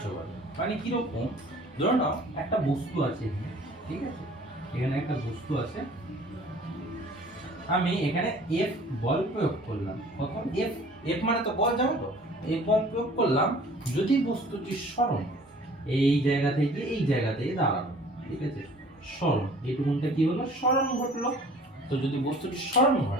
বলে। মানে কিরকম, ধরো না একটা বস্তু আছে এখানে, ঠিক আছে, এখানে একটা বস্তু আছে, আমি এখানে এফ বল প্রয়োগ করলাম। কত? এফ। এফ মানে তো বল, জানো তো? এফ বল প্রয়োগ করলাম, যদি বস্তুটি সরণ এই জায়গা থেকে এই জায়গাতে দাঁড়ালো, ঠিক আছে, সরণ, এইটুকুনটা কি হলো, সরণ ঘটলো। তো যদি বস্তুটি সরণ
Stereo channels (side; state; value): both; normal; correlation 0.50